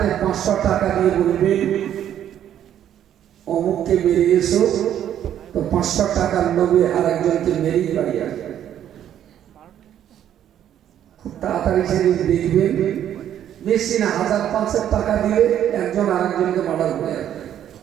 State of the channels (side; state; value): left; quieter; 10.5 dB